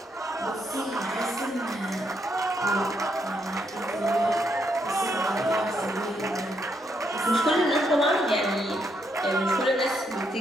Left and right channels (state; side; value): normal; both; correlation 0.77